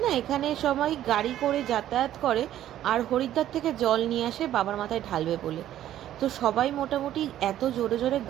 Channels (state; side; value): quieter; left; 12.2 dB